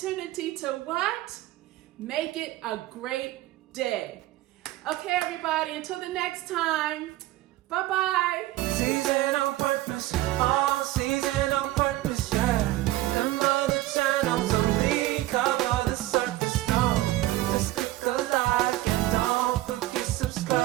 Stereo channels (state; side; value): quieter; left; 16.5 dB